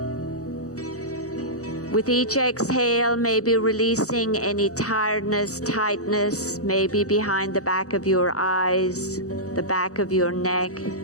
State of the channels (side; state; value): right; late; 0.66 ms